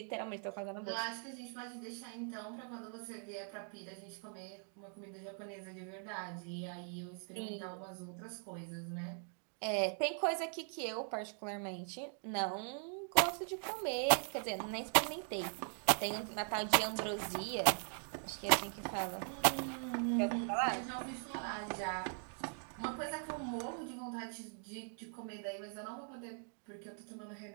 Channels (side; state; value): left; silent; 51 dB below the other